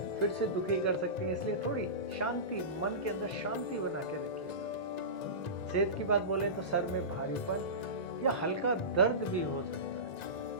फिर से दुखी कर सकती हैं, इसलिए थोड़ी शांति, मन के अंदर शांति बना के रखिएगा। सेहत की बात बोले तो सर में भारीपन या हल्का दर्द भी हो सकता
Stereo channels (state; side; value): late; right; 1.9 ms